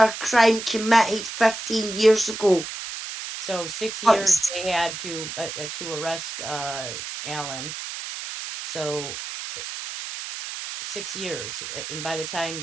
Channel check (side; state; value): right; noise; hiss, 8 dB below the sound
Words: crime committed 15 years ago. So 6 But- years they had to arrest Alan. So 6 years, and by the